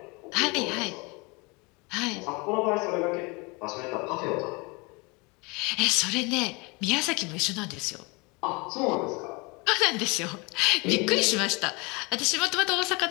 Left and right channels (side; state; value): right; quieter; 27.7 dB